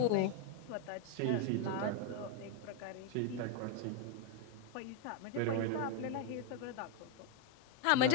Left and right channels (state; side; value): different; both; correlation 0.01